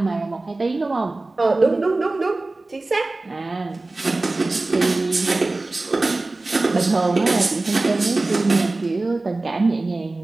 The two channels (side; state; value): left; quieter; 3.1 dB